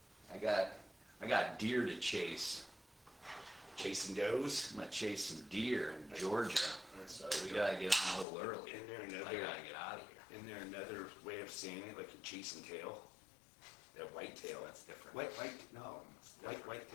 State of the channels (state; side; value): drops out; right; at 8.2 s